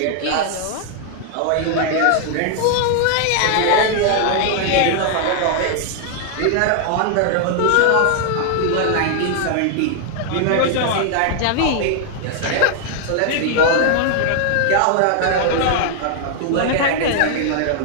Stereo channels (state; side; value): different; both; correlation 0.00